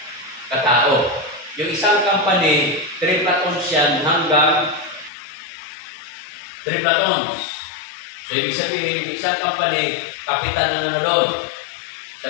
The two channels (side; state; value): right; drops out; at 5.1 s